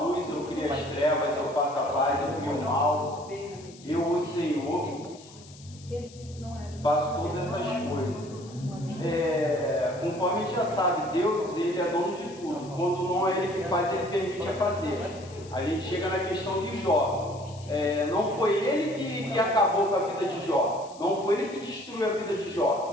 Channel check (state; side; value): noise; left; hiss, 21 dB below the sound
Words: luz, eu crio as trevas, eu faço a paz, eu crio o mal. Eu, o Senhor, faço todas essas coisas. Conforme a gente já sabe, Deus, ele é dono de tudo. Quando não é ele que faz, ele permite a fazer. A gente chega na questão de Jó. Não foi ele que acabou com a vida de Jó. Não foi ele que destruiu a vida de